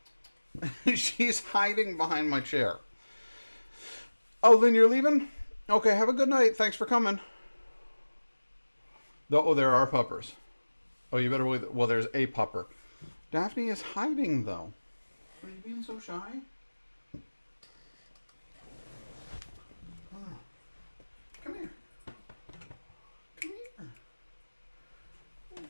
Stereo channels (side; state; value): both; inverted; correlation -1.00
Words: here. She's hiding behind my chair. Oh, Lynn, you're leaving? Okay, have a good night. Thanks for coming. Oh, there are puppers. Oh, you better believe that. Well, there's a pupper. Daphne is hiding, though. Are you being so shy? Oh. Come here. Come here. What are you